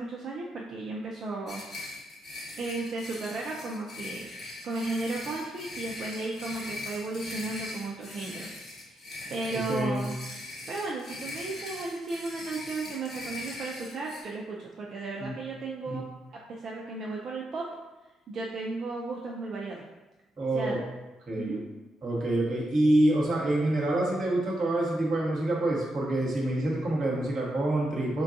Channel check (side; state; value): both; normal; correlation 0.83